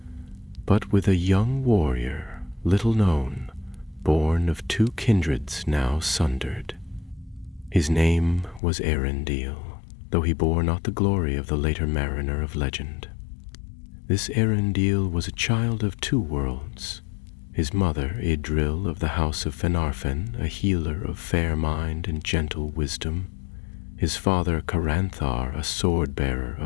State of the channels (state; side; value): drops out; right; at 8.6 s